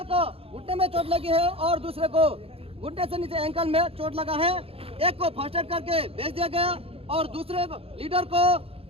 को घुटने में चोट लगी है और दूसरे को घुटने से नीचे एंकल में चोट लगा है। एक को फर्स्ट एड करके भेज दिया गया और दूसरे लीडर को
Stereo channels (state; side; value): late; left; 0.28 ms